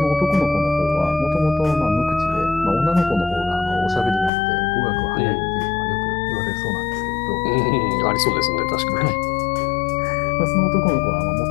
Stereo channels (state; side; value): drops out; right; at 4.3 s